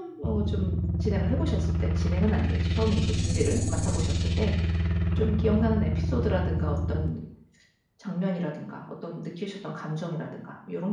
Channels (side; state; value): both; identical; correlation 1.00